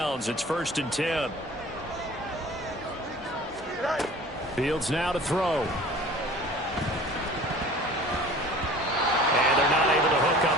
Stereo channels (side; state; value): both; normal; correlation 0.44